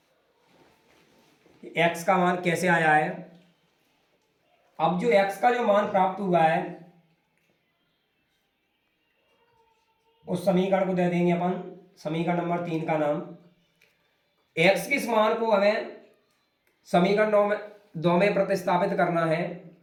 कि x का मान कैसे आया है। अब जो x का जो मान प्राप्त हुआ है उस समीकरण को दे देंगे अपन समीकरण नंबर 3 का नाम। x के इस मान को हमें समीकरण दो में प्रतिस्थापित करना है।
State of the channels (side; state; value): both; identical; correlation 1.00